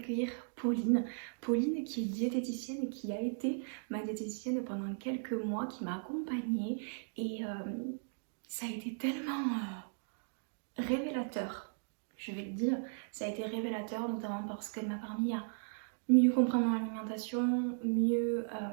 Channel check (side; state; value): left; silent; digital silence